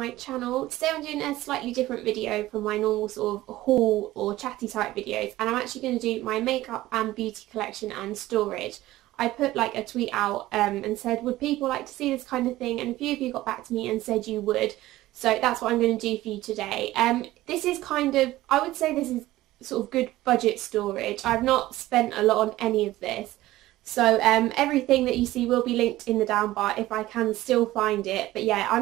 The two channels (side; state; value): left; quieter; 16.4 dB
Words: channel. Today I'm doing a slightly different video from my normal sort of haul or chatty type videos, and I'm actually going to do my makeup and beauty collection and storage. I put like a tweet out and said would people like to see this kind of thing, and a few of you got back to me and said you would, so that's what I'm going to do for you today. This is kind of, I would say this is sort of good budget storage. I've not spent a lot on any of this. So everything that you see will be linked in the down bar if I can still find it. But yeah,